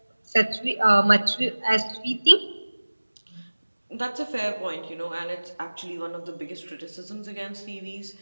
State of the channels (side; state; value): both; inverted; correlation -1.00